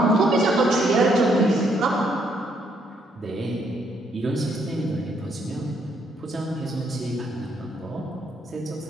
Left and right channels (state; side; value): normal; both; correlation 0.71